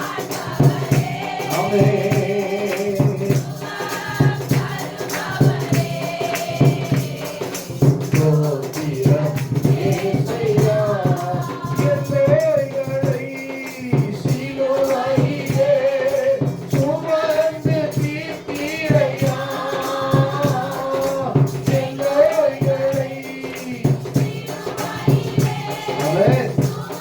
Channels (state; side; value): identical; both; correlation 1.00